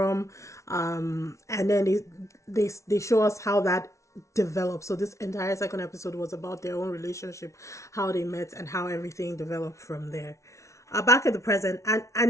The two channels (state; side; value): late; right; 0.14 ms